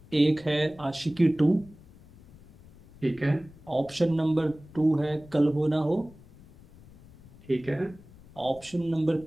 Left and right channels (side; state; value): left; noise; rumble, 23 dB below the sound